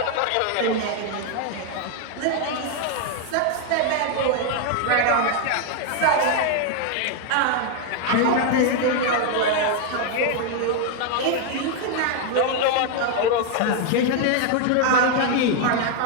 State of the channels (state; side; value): different; both; correlation 0.01